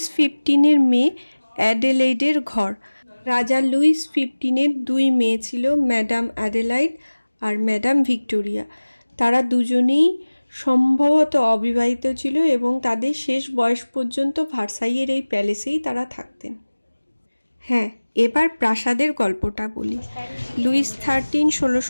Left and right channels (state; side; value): inverted; both; correlation -1.00